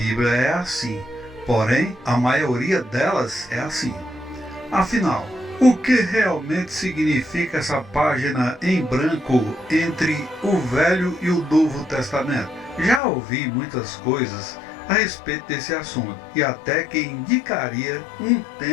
é assim, porém a maioria delas é assim. Afinal, o que realmente significa essa página em branco entre o Velho e o Novo Testamento? Já ouvi muitas coisas a respeito desse assunto, e até que indicaria um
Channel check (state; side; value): drops out; right; at 13.0 s